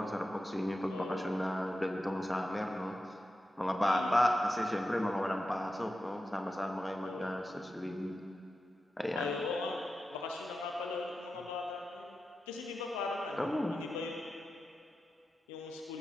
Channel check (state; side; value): normal; both; correlation 0.91